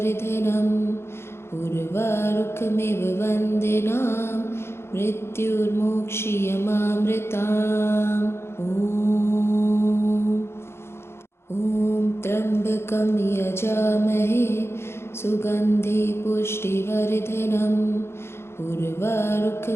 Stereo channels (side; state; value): right; late; 0.12 ms